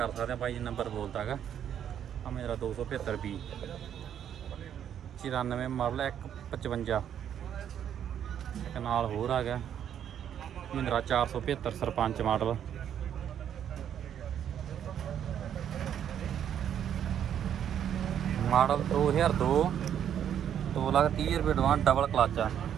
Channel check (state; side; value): quieter; left; 9.4 dB